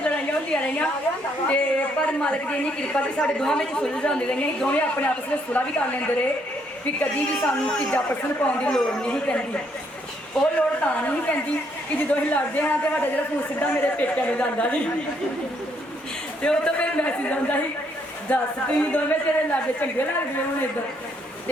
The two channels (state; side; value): normal; both; correlation 0.71